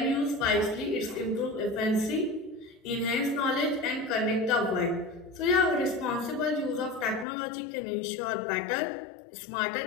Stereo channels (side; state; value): right; drops out; at 7.2 s